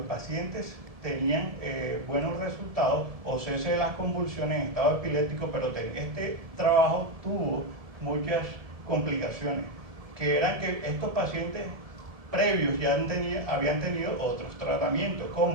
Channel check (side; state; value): left; late; 1.7 ms